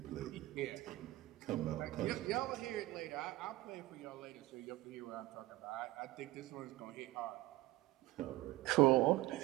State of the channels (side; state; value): left; quieter; 18.2 dB